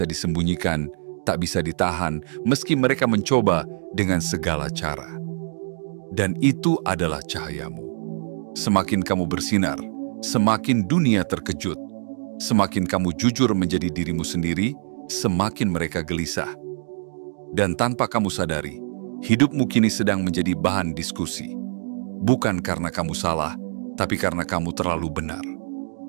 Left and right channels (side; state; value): left; silent; digital silence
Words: disembunyikan, tak bisa ditahan, meski mereka mencoba dengan segala cara. Dan itu adalah cahayamu. Semakin kamu bersinar, semakin dunia terkejut. Semakin kamu jujur menjadi dirimu sendiri, semakin mereka gelisah. Dan tanpa kamu sadari, hidupmu kini sedang menjadi bahan diskusi. Bukan karena kamu salah, tapi karena kamu terlalu benar.